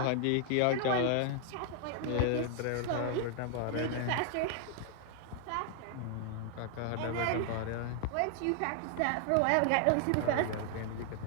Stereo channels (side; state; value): both; different; correlation 0.00